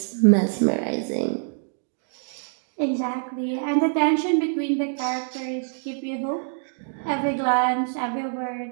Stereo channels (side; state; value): left; silent; digital silence